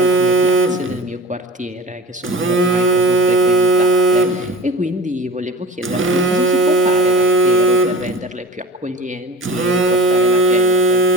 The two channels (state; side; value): normal; both; correlation 0.37